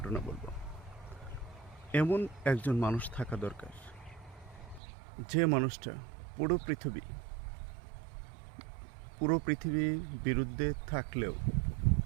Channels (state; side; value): drops out; left; at 4.8 s